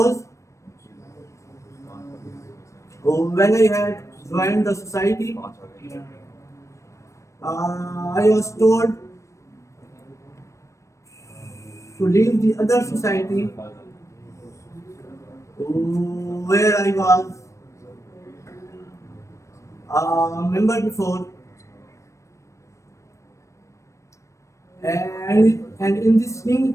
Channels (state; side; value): late; right; 0.15 ms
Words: when I had joined the society, I was told to leave the other society where I was a member before, and in this